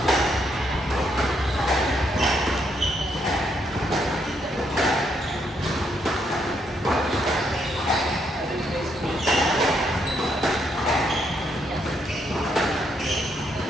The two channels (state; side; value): normal; both; correlation 0.75